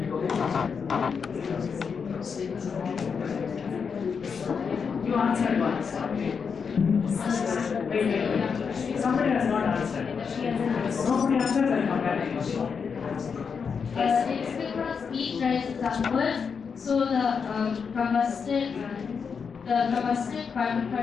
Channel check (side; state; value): right; quieter; 6.0 dB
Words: You answered once. Wait. Somebody has not answered. Nobody answers, I come back to you. It's because heat rises upwards, so the combusted carbon